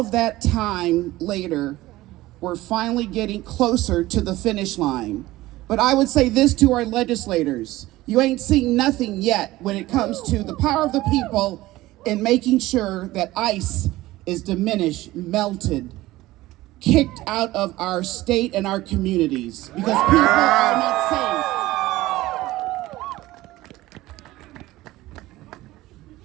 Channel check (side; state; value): left; quieter; 17.5 dB